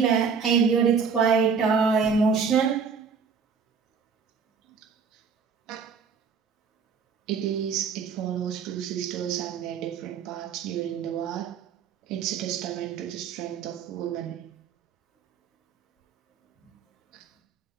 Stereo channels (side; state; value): left; quieter; 6.0 dB